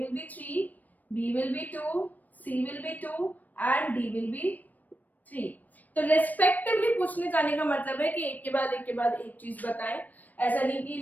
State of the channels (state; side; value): late; right; 0.082 ms